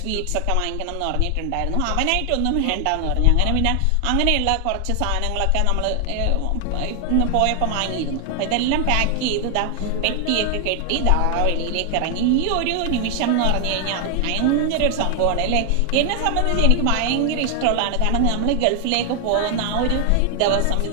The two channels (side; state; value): both; different; correlation 0.00